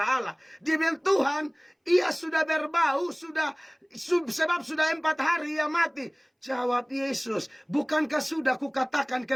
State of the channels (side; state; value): both; identical; correlation 1.00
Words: Allah. Dia bilang, Tuhan, ia sudah berbau, sebab sudah 4 hari ia mati. Jawab Yesus, bukankah sudah kukatakan